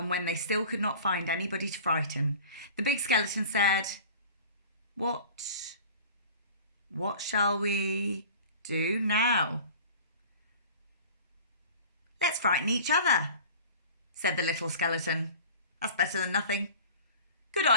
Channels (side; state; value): both; inverted; correlation -0.41